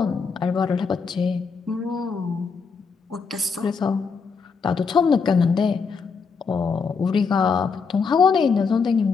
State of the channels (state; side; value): quieter; right; 5.3 dB